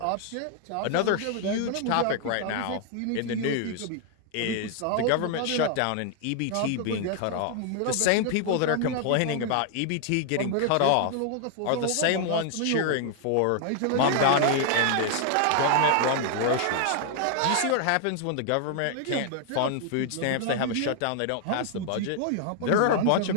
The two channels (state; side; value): different; both; correlation 0.00